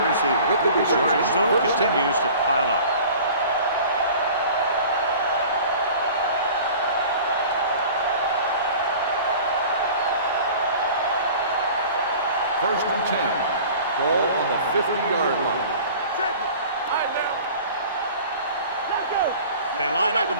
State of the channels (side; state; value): both; inverted; correlation -0.43